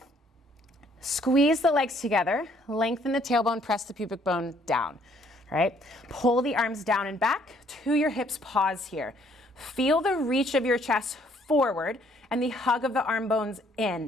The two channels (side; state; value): both; normal; correlation 0.64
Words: Squeeze the legs together, lengthen the tailbone, press the pubic bone down. Right? Pull the arms down and back to your hips, pause here. Feel the reach of your chest forward and the hug of the arm bones